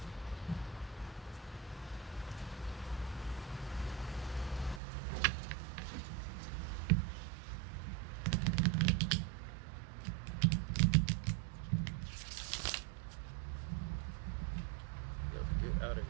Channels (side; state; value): left; drops out; at 4.8 s